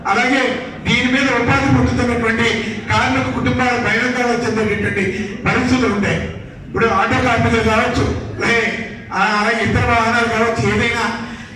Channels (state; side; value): identical; both; correlation 1.00